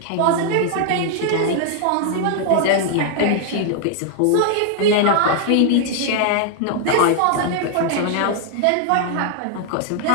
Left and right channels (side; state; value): both; different; correlation 0.00